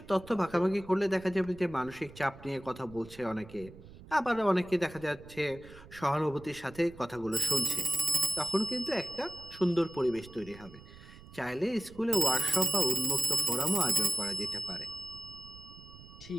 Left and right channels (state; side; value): noise; right; rumble, 19 dB below the sound